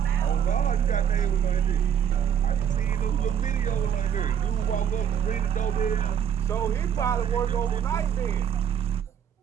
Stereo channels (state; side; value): quieter; left; 8.7 dB